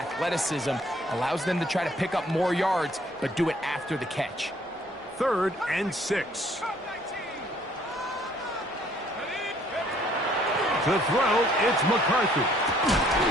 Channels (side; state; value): both; normal; correlation 0.61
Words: allows them to try to pick up more yards, but do it after the catch. 3rd and 6. To throw, it's McCarthy.